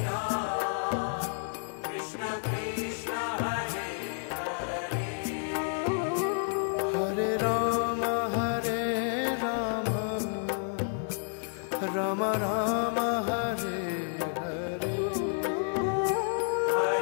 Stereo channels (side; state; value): right; silent; 55 dB below the other